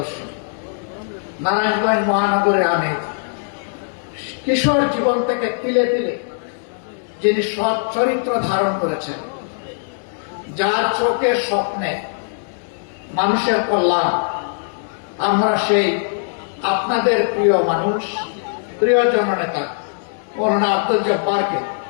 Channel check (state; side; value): silent; right; digital silence